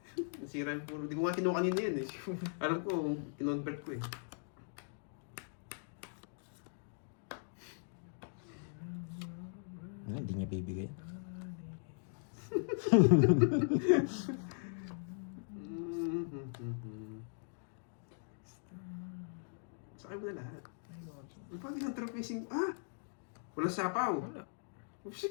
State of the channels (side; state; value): right; silent; digital silence